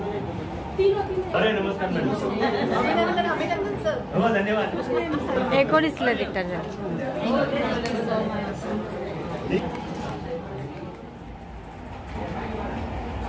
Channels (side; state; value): both; identical; correlation 1.00